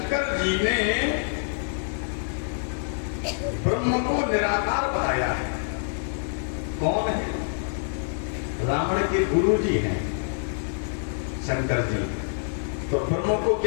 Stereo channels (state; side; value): silent; right; 61 dB below the other